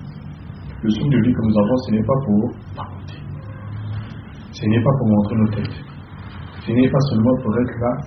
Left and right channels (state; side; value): identical; both; correlation 1.00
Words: Le souffle de vie que nous avons, ce n'est pas pour papoter. Ce n'est pas pour montrer nos têtes. Ce n'est pas seulement pour être là,